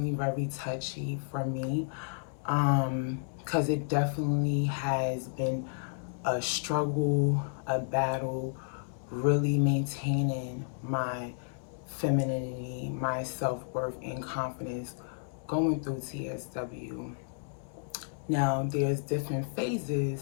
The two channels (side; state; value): right; silent; digital silence